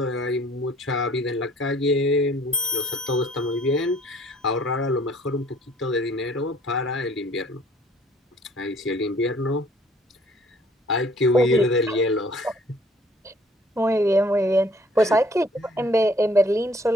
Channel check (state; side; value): normal; both; correlation 0.57